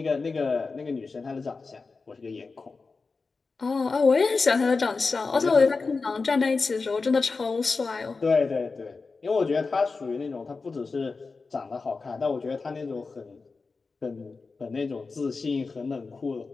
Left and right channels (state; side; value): quieter; right; 4.2 dB